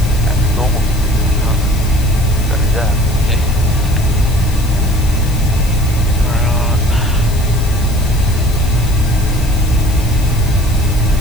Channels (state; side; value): noise; left; hiss, 16 dB below the sound